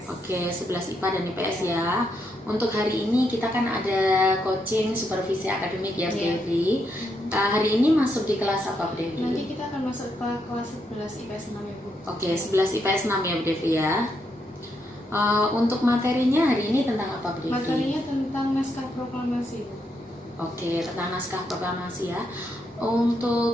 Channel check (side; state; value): both; normal; correlation 0.79